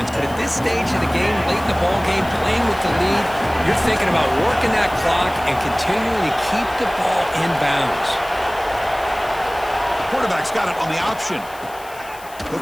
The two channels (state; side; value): noise; left; hiss, 20 dB below the sound